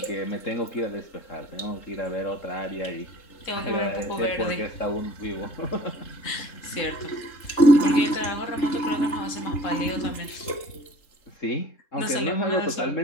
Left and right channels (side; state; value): right; late; 3.7 ms